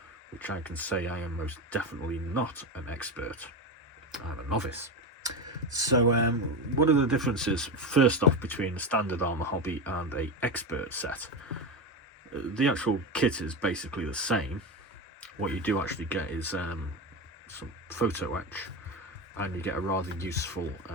which I can say I am most definitely not an expert. I'm a novice. So what are the differences, first off, between a standard Arma Hobby and a expert set? The actual kit is basically the same. What you do actually get is some photo etch, and you get a rather useful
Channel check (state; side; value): normal; both; correlation 0.17